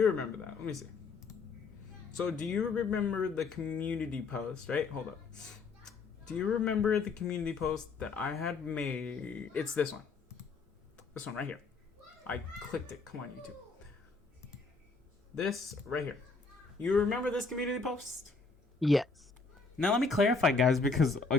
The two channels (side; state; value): right; quieter; 4.3 dB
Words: remember that. Let me see. So, do you remember the community post, right? Hold up. Do you remember the community post that I had made? It's this one. This one right here. I clicked it. Come on, YouTube. This right here. You remember this community post? Yes. Now let me clarify, guys, because